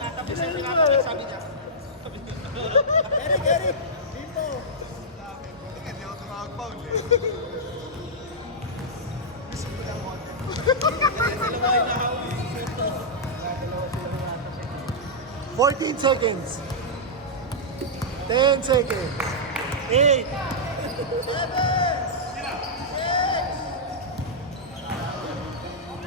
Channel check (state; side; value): normal; both; correlation -0.09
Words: Sabi niya. Gary, dito. Fourteen seconds. 10 seconds. 8.